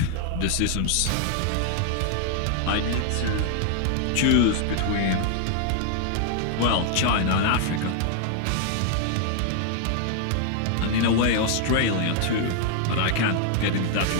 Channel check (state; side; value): different; both; correlation 0.00